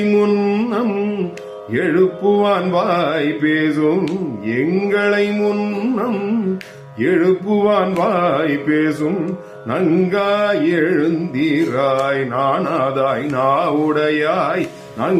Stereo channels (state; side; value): identical; both; correlation 1.00